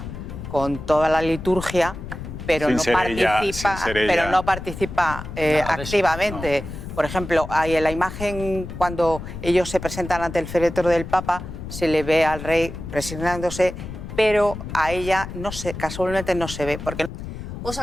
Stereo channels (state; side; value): noise; left; rumble, 9 dB below the sound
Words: con toda la liturgia, pero no participa activamente. Por ejemplo, hay en la imagen cuando ellos se presentan ante el féretro del Papa, se le ve al rey presionándose, pero a ella casualmente no se ve. Porque... ¿Os